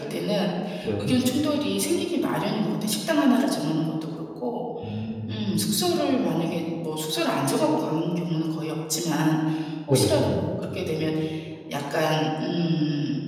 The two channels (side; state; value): both; identical; correlation 1.00